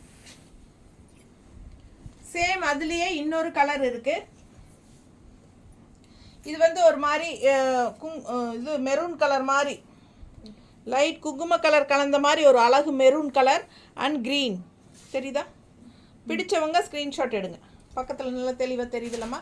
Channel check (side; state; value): both; identical; correlation 1.00